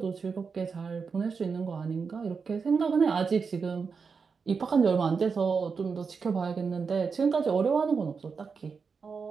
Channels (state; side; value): quieter; left; 5.4 dB